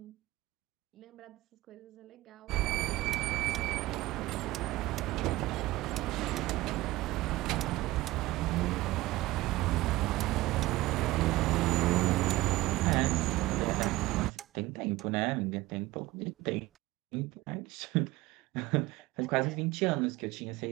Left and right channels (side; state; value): left; quieter; 18.5 dB